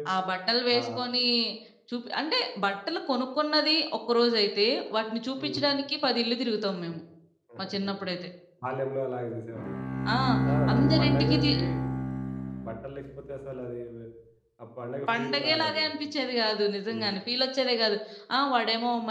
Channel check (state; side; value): identical; both; correlation 1.00